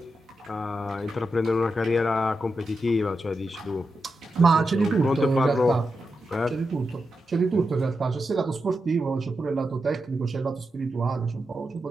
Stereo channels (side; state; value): both; normal; correlation 0.88